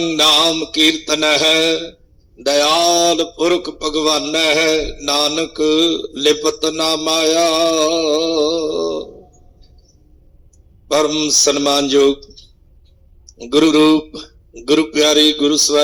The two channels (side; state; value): both; identical; correlation 1.00